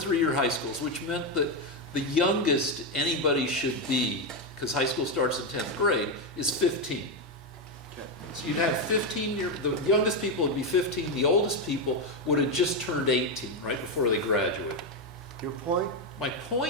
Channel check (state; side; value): normal; both; correlation 0.07